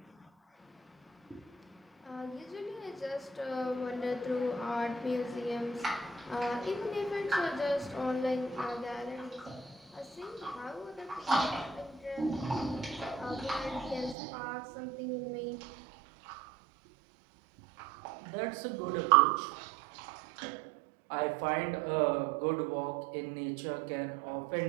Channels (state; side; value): drops out; left; at 14.2 s